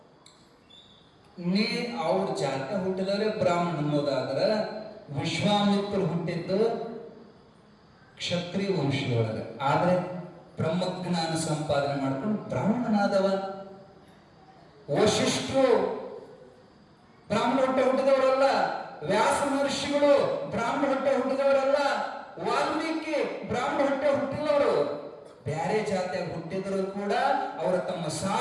ನೀ ಅವ್ರ ಜಾತಿ ಹುಟ್ಟಿದವರೇ ಬ್ರಾಹ್ಮಣ ಅನ್ನೋದಾದ್ರ ವಿಶ್ವಾಮಿತ್ರರು ಹುಟ್ಟಿದ್ದು ಕ್ಷತ್ರಿಯ ವಂಶದೊಳಗೆ, ಆದ್ರೆ ಬ್ರಹ್ಮಜ್ಞಾನ ಸಂಪಾದನೆ ಮಾಡ್ಕೊಂಡು ಬ್ರಾಹ್ಮಣನಾದವ. ವಶಿಷ್ಠರು ಬ್ರಾಹ್ಮಣ ಹೊಟ್ಟೆ ಹುಟ್ಟಿದವರಲ್ಲ. ವ್ಯಾಸ ಮಹರ್ಷಿಗಳು ಬ್ರಾಹ್ಮಣ ಹೊಟ್ಟೆ ಹುಟ್ಟಿದವರಲ್ಲ. ವಾಲ್ಮೀಕಿ ಬ್ರಾಹ್ಮಣ ಹೊಟ್ಟೆ ಹುಟ್ಟಿದವರು. ಬ್ಯಾರೆ ಜಾತಿಯಾಗಿ ಹುಟ್ಟಿದ್ರು ಕೂಡ ಅವರ ತಮ್ಮ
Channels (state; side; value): identical; both; correlation 1.00